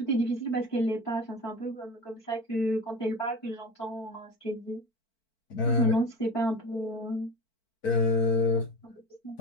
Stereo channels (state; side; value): late; right; 4.5 ms